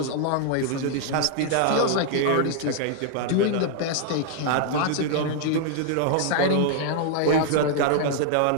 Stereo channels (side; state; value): both; different; correlation 0.00